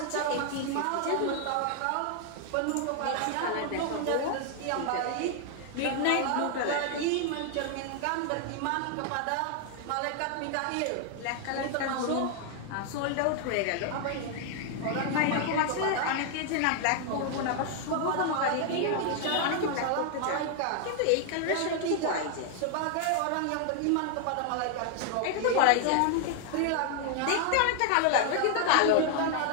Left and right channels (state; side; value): different; both; correlation 0.00